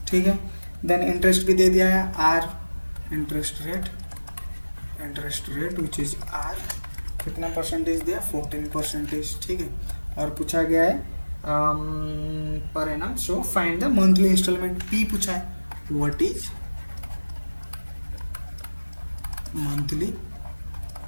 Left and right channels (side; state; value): both; inverted; correlation -1.00